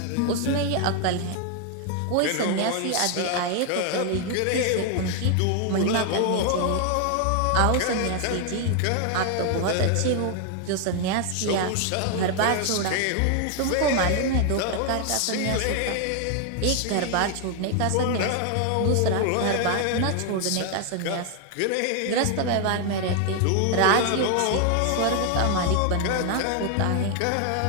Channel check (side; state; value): both; different; correlation 0.00